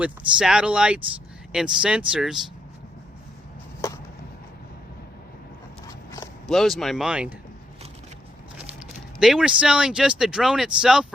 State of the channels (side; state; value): both; normal; correlation 0.77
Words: satellites and sensors blows my mind. They were selling just the drone itself